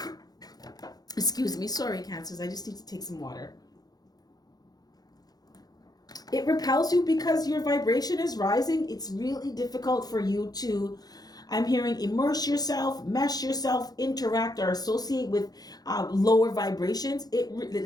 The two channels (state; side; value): late; right; 0.19 ms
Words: Excuse me. Sorry, Cancers. I just need to take some water. It repels you because your vibration is rising. It's really difficult for you to, I'm hearing, immerse yourself, mesh yourself, interact, or associate with lower vibrations. It